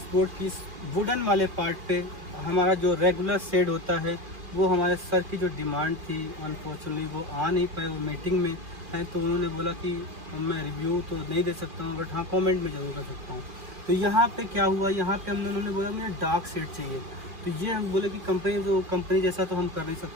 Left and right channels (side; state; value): left; late; 2.4 ms